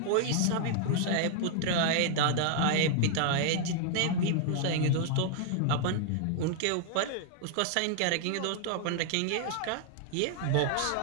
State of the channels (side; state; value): both; different; correlation 0.00